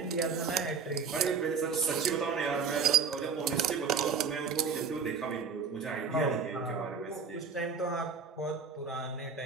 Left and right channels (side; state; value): left; quieter; 5.5 dB